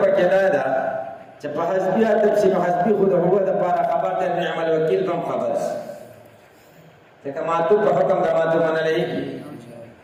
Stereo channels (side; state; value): both; identical; correlation 1.00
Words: پکې دا ده چې په حسبي عطف شي نو حسبي خو د هو د لپاره خبر د نعم الوکیل کوم خبر شي ځکه ماتو په حکم د ماتو منل کېږي